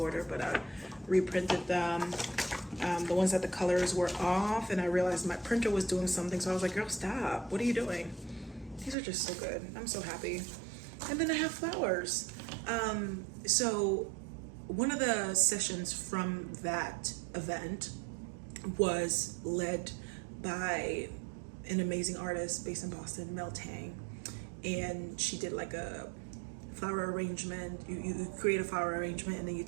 but I reprinted them. The ones that the colors were off, and I realized my printer was doing something, so I was like, girl, stop. What are you doing? These are just so good. I'm so happy. And then I have flowers. So one of the sessions from that event was led by an amazing artist based in Boston, Mel Tang, and she did like a flower arrangement. You create a flower arrangement and then you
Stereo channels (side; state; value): left; drops out; at 9.0 s